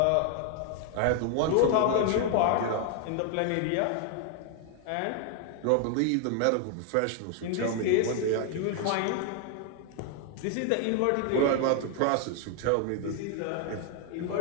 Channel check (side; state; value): both; different; correlation 0.00